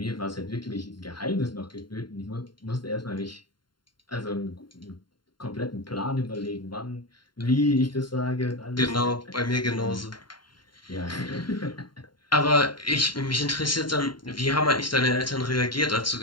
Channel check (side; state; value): right; late; 0.72 ms